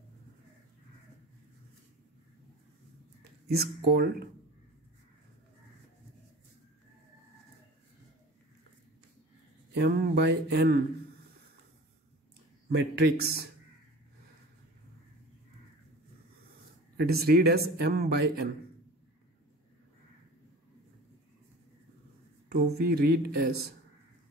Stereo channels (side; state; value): both; normal; correlation 0.39